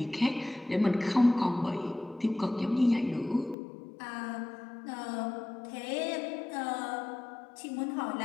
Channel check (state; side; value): drops out; right; at 3.6 s